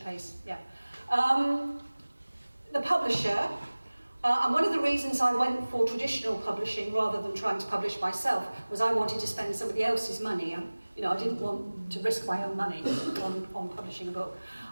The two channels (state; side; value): inverted; both; correlation -1.00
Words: Yeah. The publisher, and one of the reasons I went for traditional publishing rather than trying to publish myself was I wanted to spend somebody else's money. I didn't want to risk my own money on publishing a book.